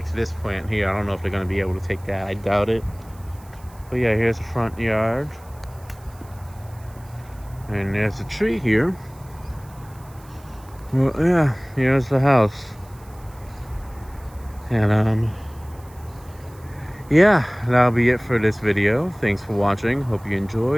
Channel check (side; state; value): right; noise; hiss, 26 dB below the sound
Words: this plant here. I don't know if they're going to be able to take that. I doubt it. But yeah, here's the front yard. And there's a tree here. Well, yeah, here's the house. And yeah, that'll be it for this video. Thanks for watching. Hope you